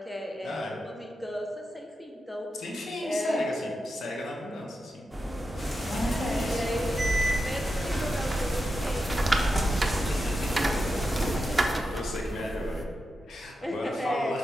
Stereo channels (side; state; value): both; normal; correlation 0.89